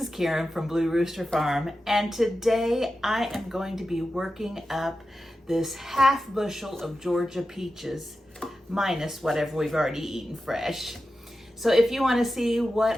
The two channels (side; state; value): both; normal; correlation 0.92